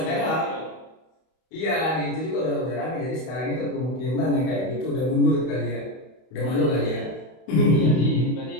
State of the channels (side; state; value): right; late; 32 ms